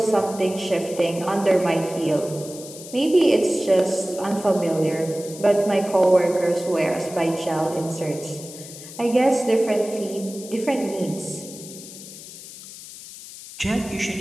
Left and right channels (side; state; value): left; noise; hiss, 15 dB below the sound